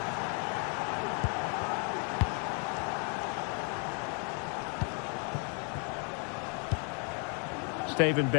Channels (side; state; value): right; quieter; 38.8 dB